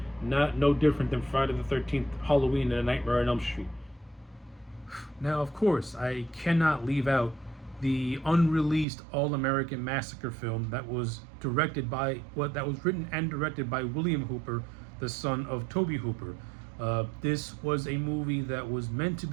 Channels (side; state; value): left; drops out; at 8.8 s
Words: no different than Friday the 13th, Halloween, and A Nightmare on Elm Street. Now, of course, I cannot leave out the unreleased All-American Massacre film that was written and directed by William Hooper, the son of Tobe Hooper. This was a movie that was meant to